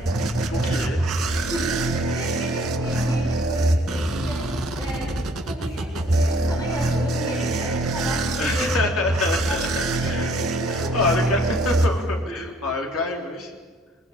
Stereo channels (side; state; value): both; normal; correlation 0.61